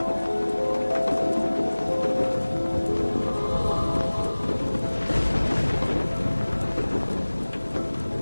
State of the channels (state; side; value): inverted; both; correlation -1.00